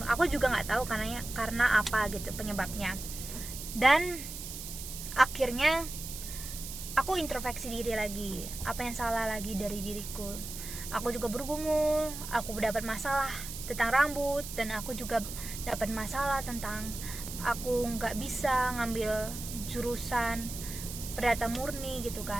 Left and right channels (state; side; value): noise; right; hiss, 9 dB below the sound